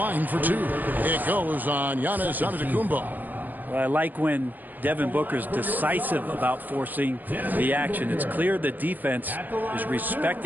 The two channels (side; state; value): left; late; 0.085 ms